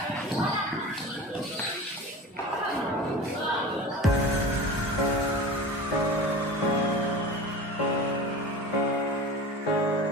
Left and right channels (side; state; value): both; normal; correlation 0.34